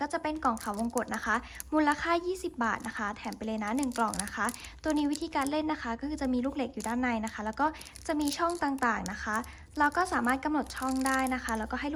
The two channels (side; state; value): both; identical; correlation 1.00